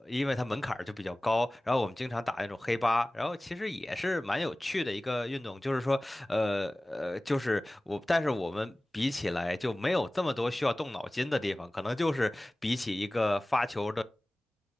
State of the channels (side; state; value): both; normal; correlation 0.98